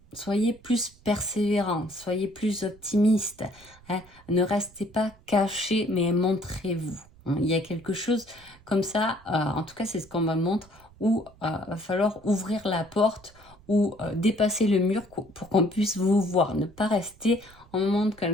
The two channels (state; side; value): noise; right; rumble, 25 dB below the sound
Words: Soyez plus persévérant, soyez plus optimiste. Hein. Ne restez pas caché, mais montrez-vous. Hein. Il y a quelque chose comme ça, en tout cas c'est ce qu'on me montre, où va falloir ouvrir la porte ou dépasser le mur pour qu'on puisse vous voir. Ne pas rester en moment de